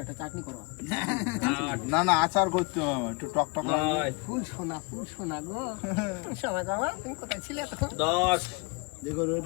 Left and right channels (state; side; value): quieter; right; 28.2 dB